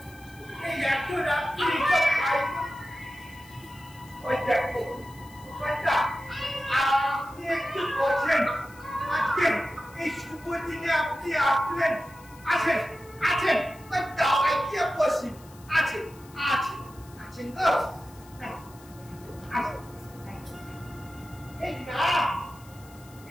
আপনি একটু বলছেন, আজকে এই শুভ দিনে আপনি আসলেন, আছেন আছেন দাওয়াই কি বসি আছেন আছেন আছেন তো এই না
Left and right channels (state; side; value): noise; left; hiss, 24 dB below the sound